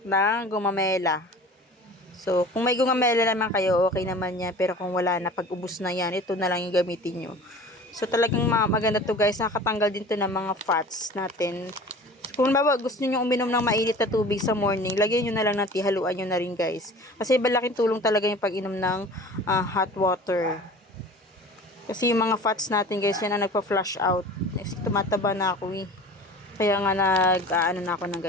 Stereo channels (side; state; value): both; normal; correlation 0.41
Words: ng gumamela. So, kung may gumamela naman kayo, okay naman yan. Pero kung wala na, pag ubos na yan, ito na lang yung gamitin nyo. So, talagang maganda to guys. Nakakatanggal din to ng mga fats natin. So, kung bawa gusto niyo uminom ng mainit na tubig sa morning, lagyan niyo na lang ng tea, haluan niyo na rin guys. Kasi malaking tulong talaga yung pag-inom ng hot water. Kasi yung mga fats natin guys, yan ang nagpa-flush out. Next, tumataba na ako eh. Kaya nga na ako ng